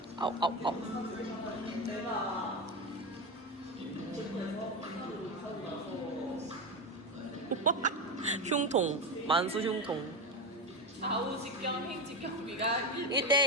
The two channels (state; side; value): normal; both; correlation 0.15